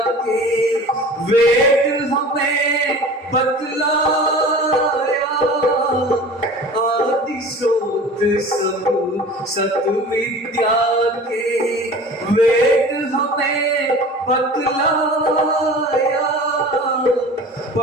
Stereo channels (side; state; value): both; normal; correlation 0.40